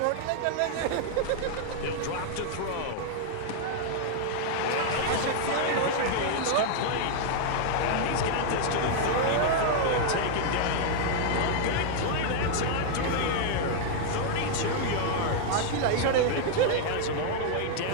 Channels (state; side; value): different; both; correlation 0.00